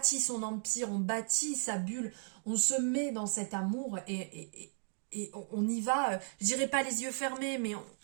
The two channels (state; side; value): silent; left; 54 dB below the other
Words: son empire, on bâtit sa bulle, on se met dans cet amour et on y va, je dirais pas les yeux fermés, mais